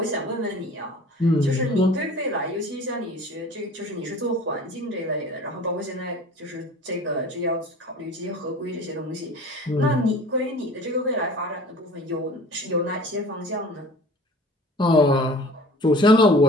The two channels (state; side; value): normal; both; correlation 0.44